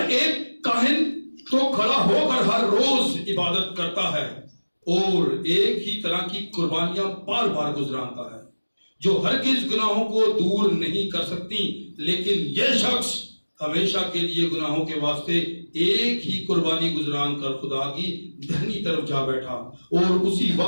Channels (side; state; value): both; inverted; correlation -1.00